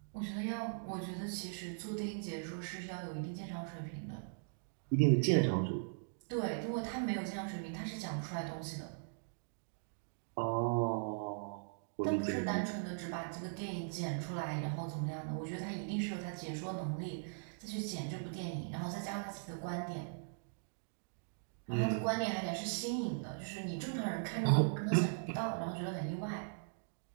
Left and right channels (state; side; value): silent; left; digital silence